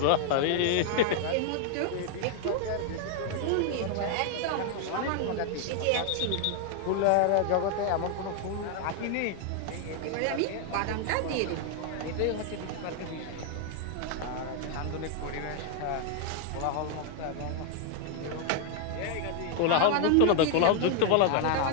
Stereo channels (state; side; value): different; both; correlation 0.00